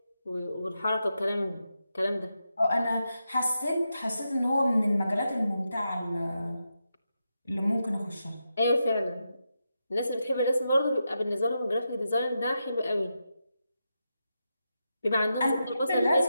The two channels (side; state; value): both; inverted; correlation -0.87